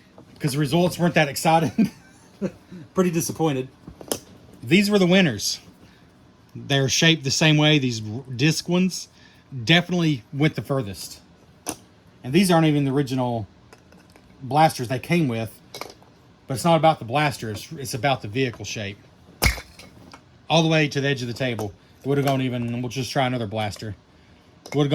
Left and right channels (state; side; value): identical; both; correlation 1.00